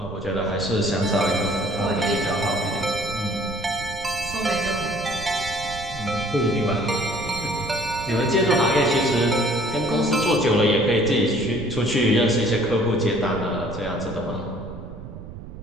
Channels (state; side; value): noise; right; rumble, 12 dB below the sound